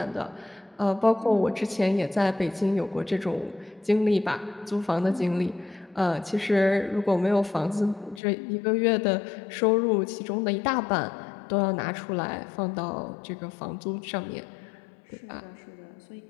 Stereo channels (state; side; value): drops out; right; at 8.2 s